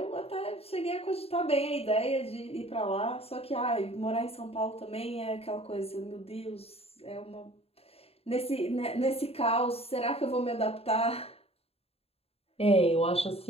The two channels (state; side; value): late; right; 0.29 ms